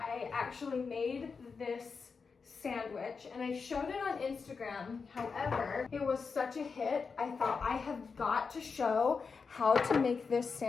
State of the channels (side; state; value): right; quieter; 5.1 dB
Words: actually made this sandwich and I showed it on Instagram. However, it was such a hit, I thought I have got to show how to make this